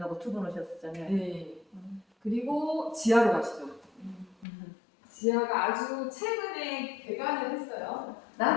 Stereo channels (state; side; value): drops out; right; at 4.5 s